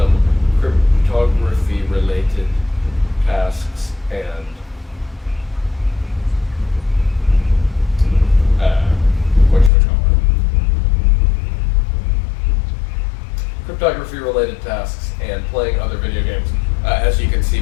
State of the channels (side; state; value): right; drops out; at 9.7 s